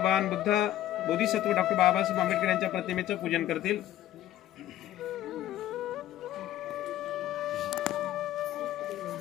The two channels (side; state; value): right; quieter; 13.0 dB